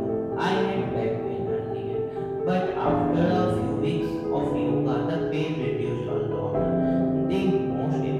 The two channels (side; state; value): both; identical; correlation 1.00